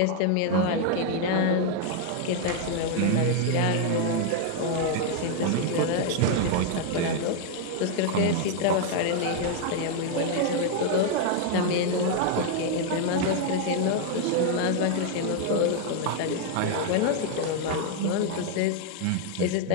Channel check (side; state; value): both; different; correlation 0.00